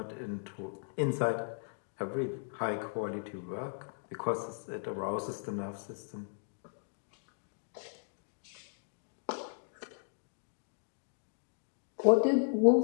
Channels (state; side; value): silent; right; digital silence